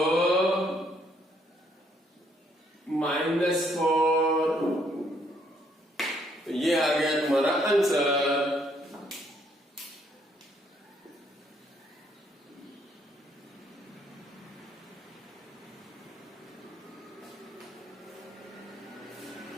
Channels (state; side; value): normal; both; correlation 0.69